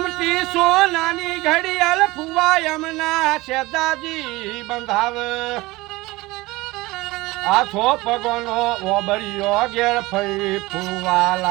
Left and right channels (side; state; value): left; quieter; 20.7 dB